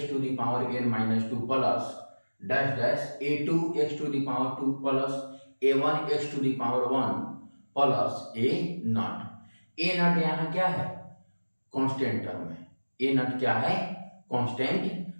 to the power n minus 2 plus dash dash a2 x to the power 2 plus a1 x to the power 1 plus a not. A not यहाँ क्या है? Constant term है। ए not क्या है? Constant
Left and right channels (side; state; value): both; inverted; correlation -1.00